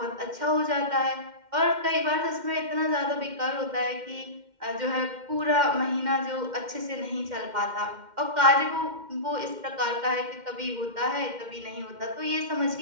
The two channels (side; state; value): left; late; 2.1 ms